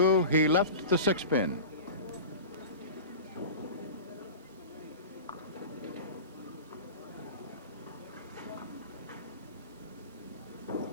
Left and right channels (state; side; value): inverted; both; correlation -0.32